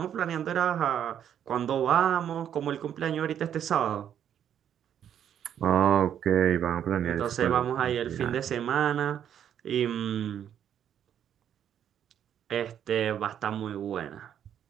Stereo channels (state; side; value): quieter; left; 9.5 dB